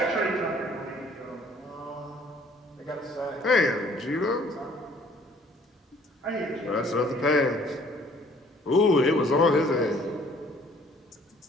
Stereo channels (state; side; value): normal; both; correlation 0.58